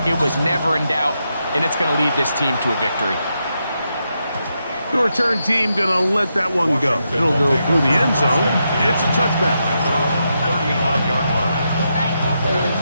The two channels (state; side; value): inverted; both; correlation -0.84